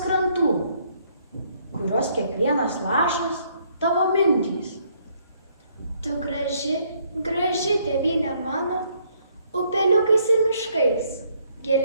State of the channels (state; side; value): inverted; both; correlation -0.68